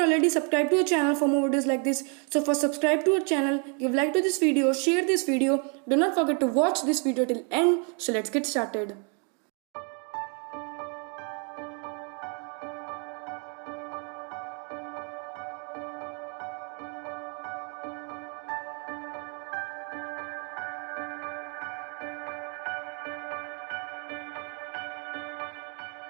already subscribe to our channel for more videos like this, so first subscribe to our channel, give like to this video, share this video, do not forget to watch this video till end. So let's get started.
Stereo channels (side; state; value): left; quieter; 38.6 dB